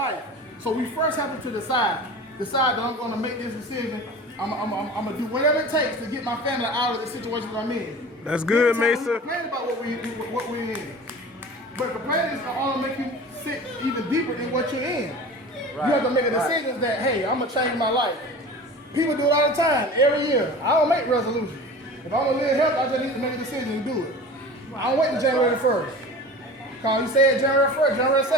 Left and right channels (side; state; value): both; normal; correlation 0.37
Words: So we first have to decide that I'm going to make this decision. I'm going to do whatever it takes to get my family out of the situation that I'm in. That's good, Mason. Complain about what we're in. But complaining is going to make you sit even deeper in what you're in. Right. You have to make a decision that, hey, I'm going to change my life. People do it all the time, every year. I don't make resolutions. If I'm going to live healthy, I just need to make a decision and do it. I don't wait until January 1st. Because you said January 1st, January